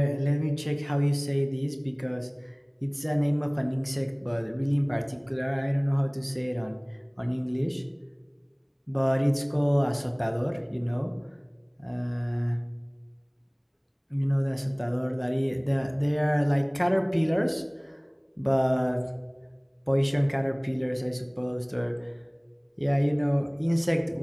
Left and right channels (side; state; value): both; identical; correlation 1.00